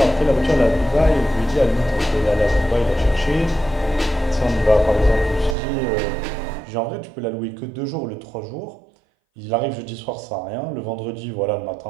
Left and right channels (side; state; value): left; drops out; at 5.6 s